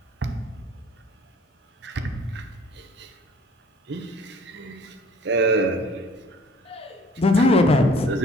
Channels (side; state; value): both; normal; correlation 0.53